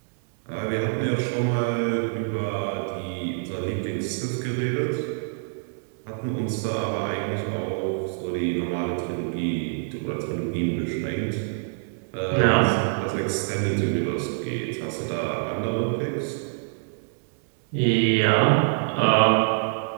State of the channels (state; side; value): silent; left; digital silence